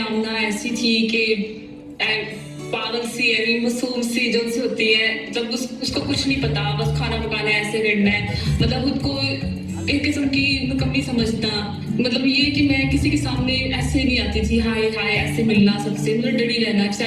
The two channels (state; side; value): identical; both; correlation 1.00